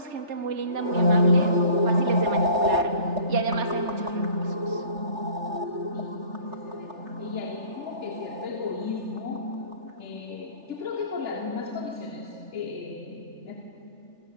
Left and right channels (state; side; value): late; left; 3.3 ms